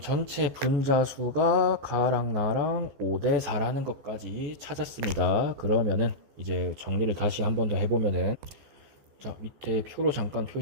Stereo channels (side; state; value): left; late; 14 ms